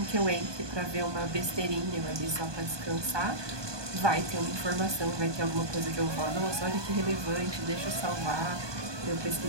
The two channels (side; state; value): left; late; 1.2 ms